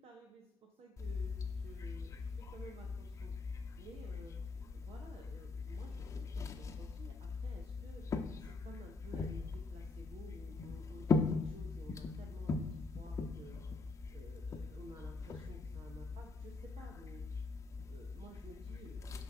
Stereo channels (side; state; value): right; quieter; 3.8 dB